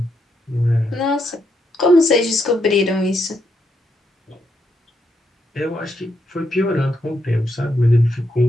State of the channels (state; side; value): normal; both; correlation 0.79